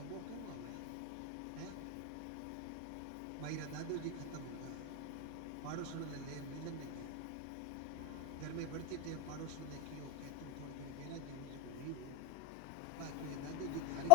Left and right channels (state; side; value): different; both; correlation 0.00